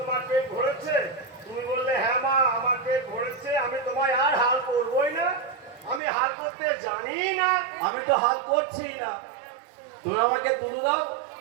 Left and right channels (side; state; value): left; drops out; at 6.0 s